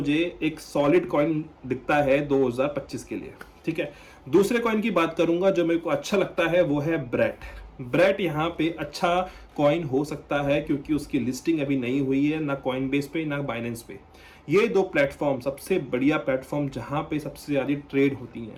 एक सॉलिड कॉइन दिखता है 2025 के लिए, ठीक है। दूसरे कॉइन की बात करूंगा जो मेरे को अच्छा लगता है, वो है ब्रेट यहाँ पे अच्छा कॉइन हो सकता है, क्योंकि उसकी लिस्टिंग अभी नहीं हुई है, ना कॉइनबेस पे ना बाइनेंस पे। ये दो प्लेटफॉर्म सबसे बढ़िया प्लेटफॉर्म जहाँ पे सबसे ज़्यादा ट्रेड होती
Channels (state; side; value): identical; both; correlation 1.00